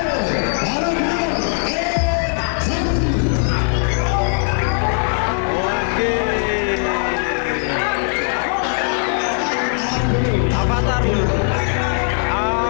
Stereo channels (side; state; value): right; silent; 56 dB below the other